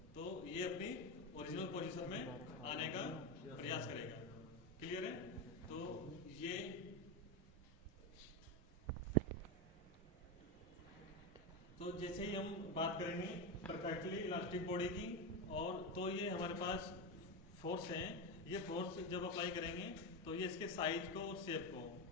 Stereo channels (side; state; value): both; normal; correlation 0.13